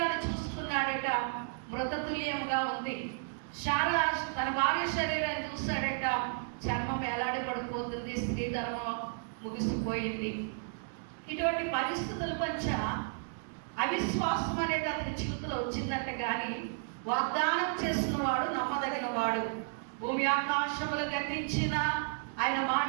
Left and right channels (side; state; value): left; silent; digital silence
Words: చూసుకున్నాడట, మృతతుల్యంగా ఉంది. శారా తన భార్య శరీరాన్ని చూస్తాడట, చర్మం ఎలాడి పడిపోతుంది, స్త్రీ ధర్మం ముగిసిపోయింది. ఇటువంటి పరిస్థితుల మధ్య అవిశ్వాసం అనేది అతని జీవితంలో వచ్చిందంట. కానీ వాగ్దానం చేసిన వాడు నమ్మదగిన వాడు. భూమి ఆకాశములు గతించిన ఆయన